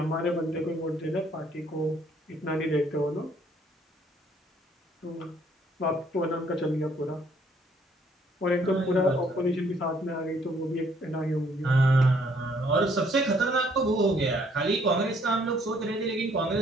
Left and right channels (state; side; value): normal; both; correlation 0.64